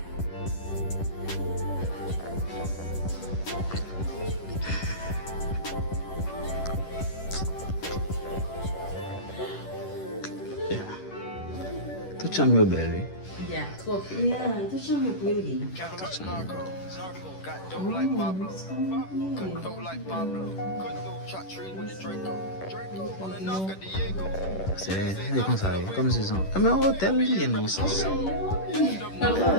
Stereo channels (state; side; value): late; right; 10 ms